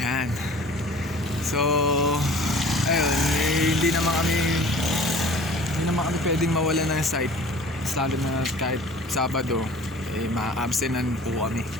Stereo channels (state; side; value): normal; both; correlation 0.46